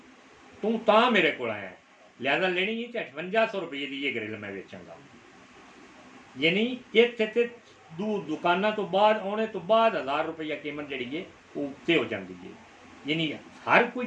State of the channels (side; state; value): both; identical; correlation 1.00